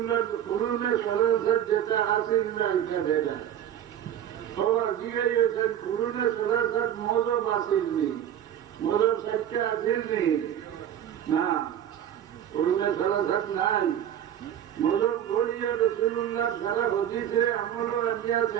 কুরুনে সরাসর যেটা আসেন না এটা বেদাত সবার জিজ্ঞাসেন কুরুনে সরাসর মজব আসেননি মজব সাইটটা আসেননি না কুরুনে সরাসর নাই মজব করিয়া রসুলুল্লাহ সারা হদিসে আমল আনিয়া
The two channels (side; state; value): left; quieter; 10.3 dB